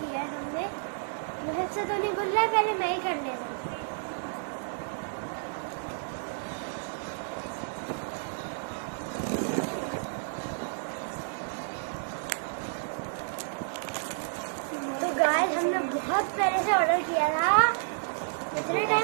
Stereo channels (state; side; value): silent; left; digital silence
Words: है हमने। मुझे से तो नहीं गुल्ला, पहले मैं ही कर ले रही। तो गाइस हमने बहुत पहले से ऑर्डर किया था, इतने